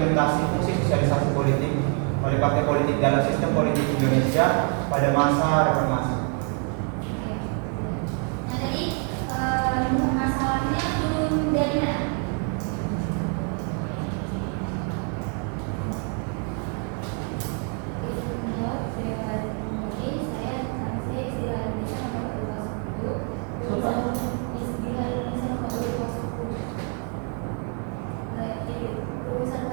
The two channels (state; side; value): quieter; left; 39.1 dB